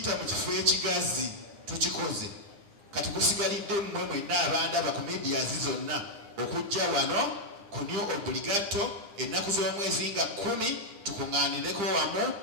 mu kifo ekigazi tukikoze. Kati kusigalidde mmwe mwenna abandaba ku media zonna okujja wano ku New Obligato ennaku z'omwezi nga 10 tukuŋŋaanireko wamu,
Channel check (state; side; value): late; left; 10 ms